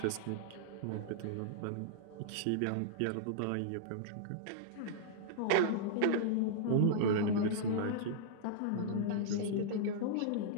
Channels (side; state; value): both; different; correlation -0.01